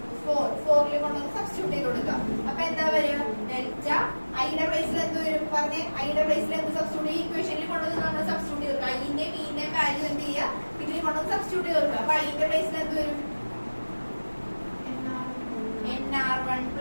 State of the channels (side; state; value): both; inverted; correlation -1.00